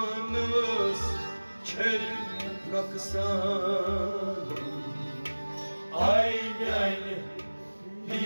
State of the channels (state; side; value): inverted; both; correlation -1.00